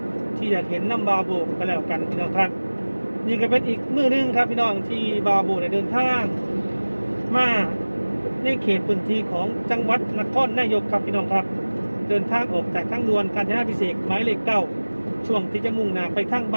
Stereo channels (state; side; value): inverted; both; correlation -1.00